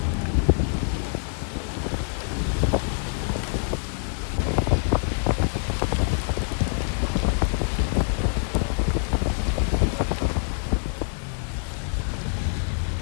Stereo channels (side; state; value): right; silent; 55 dB below the other